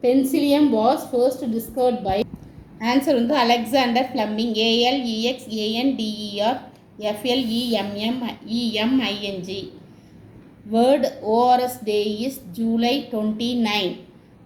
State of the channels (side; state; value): both; identical; correlation 1.00